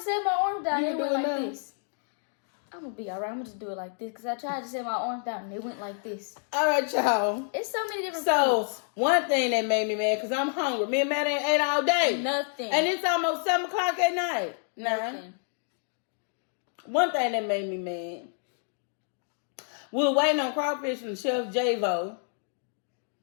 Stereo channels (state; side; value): silent; right; 59 dB below the other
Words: set my arms down. You It went do it like now? this. I'm going to be all right. I'm going to just do it like this because I tried to set my arms down and it went like this. All right, y'all. It's so many different So, foods. one thing that made me mad, because I'm hungry. Me and Matt ain't ate all day. Nothing. And it's almost 7 o'clock at night. Nothing. One thing that made me mad. We were waiting on crawfish from Chef Javo.